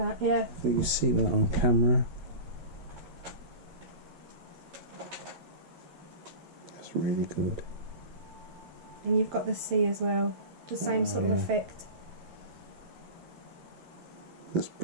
yeah. I think you see that on camera. That's really good. And you've got the sea as well. The same sort of effect. That's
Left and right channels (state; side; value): late; left; 12 ms